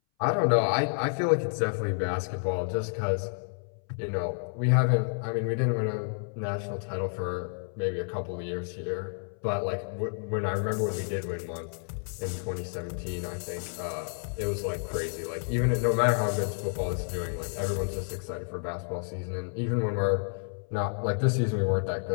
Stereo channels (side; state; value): right; silent; 58 dB below the other